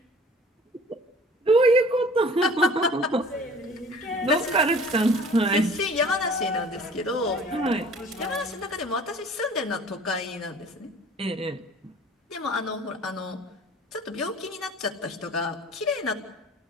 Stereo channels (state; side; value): normal; both; correlation 0.48